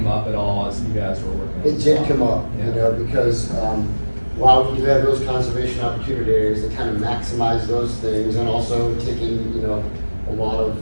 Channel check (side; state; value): both; inverted; correlation -1.00